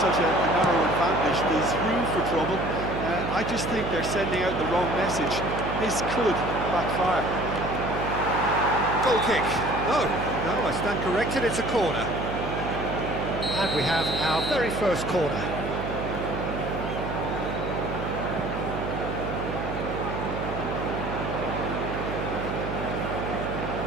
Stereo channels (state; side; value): noise; right; hum, 5 dB below the sound